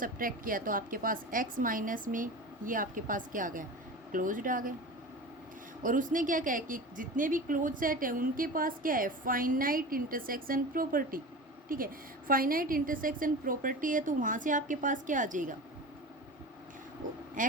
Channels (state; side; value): normal; both; correlation 0.32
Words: किया तो आपके पास x माइनस में ये आपके पास क्या आ गया, क्लोज्ड आ गया। और उसने क्या कहा कि जितने भी क्लोज सेट है उनके पास क्या है, फाइनाइट इंटरसेक्शन प्रॉपर्टी। ठीक है, फाइनाइट इंटरसेक्शन प्रॉपर्टी है तो वहाँ से आपके पास क्या आ जाएगा,